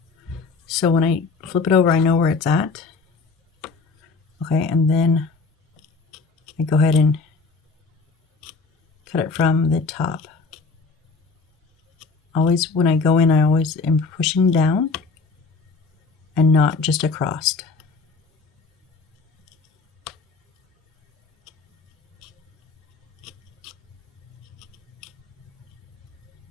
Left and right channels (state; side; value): quieter; right; 4.3 dB